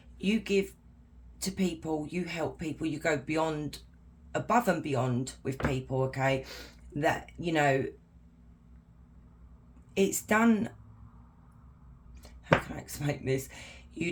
you give to people, you help people, you go beyond, above and beyond with people. Okay, that, you know, it's done. How can I explain this? You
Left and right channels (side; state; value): both; identical; correlation 1.00